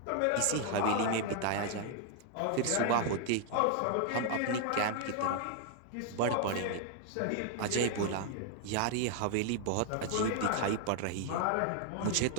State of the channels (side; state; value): both; different; correlation 0.00